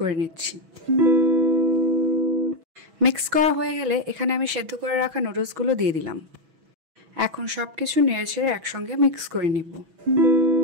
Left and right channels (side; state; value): left; late; 6.1 ms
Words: নিচ্ছি। মিক্স করা হয়ে গেলে এখানে আমি সেদ্ধ করে রাখা নুডলসগুলো দিয়ে দিলাম। এখন সব কিছু নেড়েচেড়ে একসঙ্গে মিক্স করে নিব।